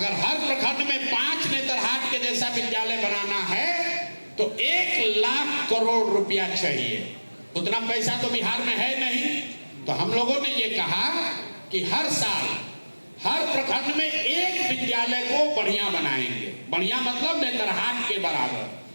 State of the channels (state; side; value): inverted; both; correlation -1.00